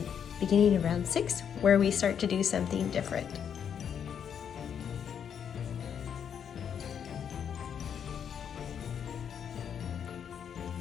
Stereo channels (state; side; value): quieter; right; 8.1 dB